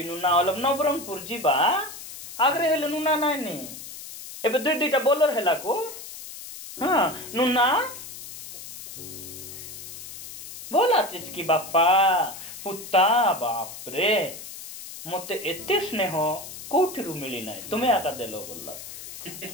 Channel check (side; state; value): left; noise; hiss, 12 dB below the sound